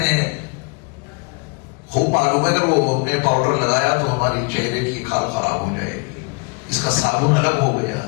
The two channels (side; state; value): right; quieter; 31.9 dB